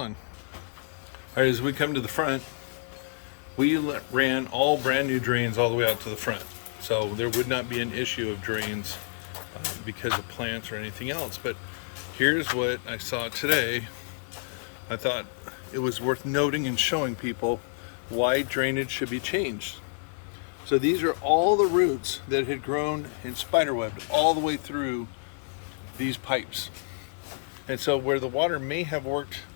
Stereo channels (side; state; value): right; silent; digital silence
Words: All right, as we come to the front, we ran all brand new drains all the way out to the front. So there would not be an issue of drains because of plants or anything else. But here's what I saw today. I thought it was worth noting and showing people why drainage should be changed. So these are all the roots that had grown and spiderwebbed all the way through these pipes. And so where the water may have worked